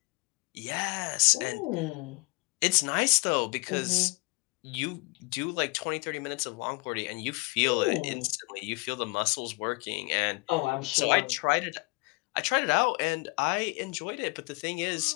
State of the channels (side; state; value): right; quieter; 28.3 dB